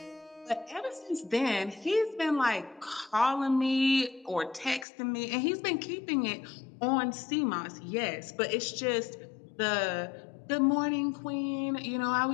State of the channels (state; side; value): drops out; right; at 4.9 s